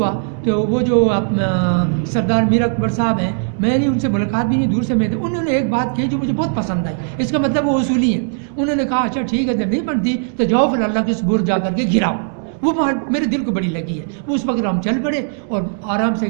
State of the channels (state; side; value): silent; left; 63 dB below the other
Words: تو وہ جو سردار میر اکبر صاحب ہیں, میں نے ان سے ملاقات بھی نہیں, دور سے میں تھے, انہوں نے ایک بات کہی جو مجھے بہت پسند آئی. اس کا مطلب وہ اصولی ہیں. انہوں نے کہا اچھا ٹھیک ہے جب نہیں بنتی تو جاؤ پھر اللہ کے سپرد جا کر کے گراؤ. وہ بات میرے دل کو بڑی لگی ہے. وہ اس وقت ہم چل پڑے اور آرام سے